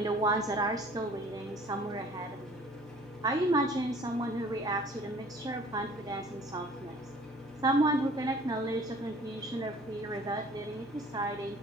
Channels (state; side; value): normal; both; correlation 0.51